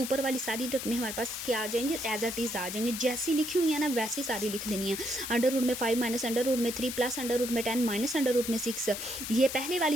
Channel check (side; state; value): left; noise; hiss, 6 dB below the sound